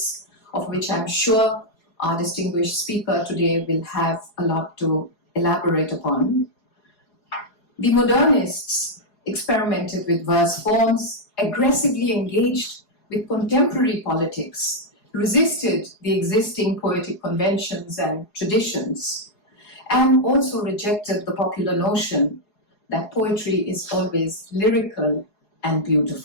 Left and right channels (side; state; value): right; late; 4.8 ms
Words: of which I'm sure our distinguished speaker today will have a lot to elaborate upon. The modernists experimented with verse forms, aggressively engaged with contemporary politics, resisted the existing poetic conventions and traditions, and also rejected the popular notion that poetry is always lyrical and